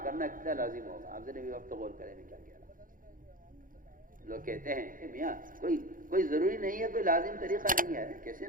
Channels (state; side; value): late; left; 0.40 ms